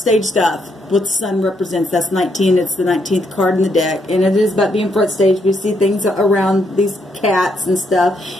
stuff. What the sun represents. That's 19. It's the 19th card in the deck, and it is about being front stage. We see things around these cats and stuff.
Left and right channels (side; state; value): both; normal; correlation 0.76